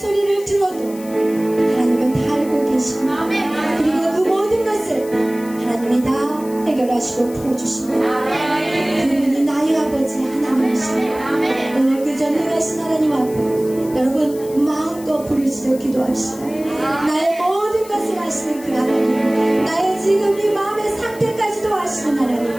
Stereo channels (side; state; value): left; noise; hiss, 19 dB below the sound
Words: 들어도 하나님은 다 알고 계십니다. 그리고 그 모든 것을 하나님이 다 해결하시고 풀어주십니다. 그분이 나의 아버지 하나님이십니다. 오늘 그 전능하신 하나님 앞에 여러분 마음껏 부르짖어 기도합시다. 나의 모든 것을 아시는 그 하나님, 나의 지금 이 마음의 상태까지도 아시는 하나님,